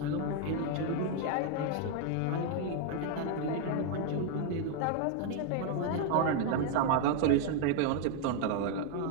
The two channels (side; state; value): both; different; correlation 0.01